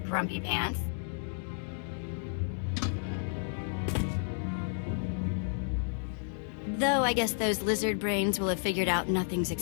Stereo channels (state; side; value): silent; right; digital silence